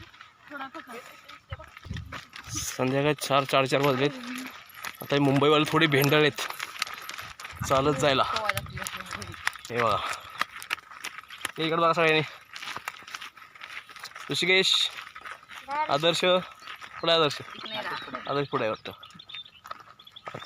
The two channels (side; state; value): both; identical; correlation 1.00